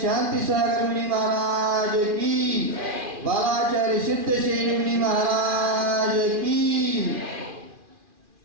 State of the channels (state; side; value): late; left; 2.4 ms